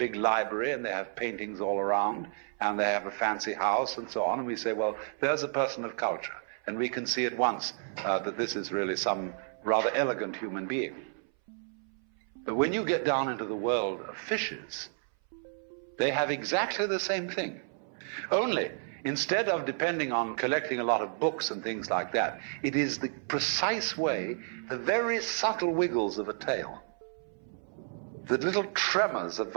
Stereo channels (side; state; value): left; silent; 57 dB below the other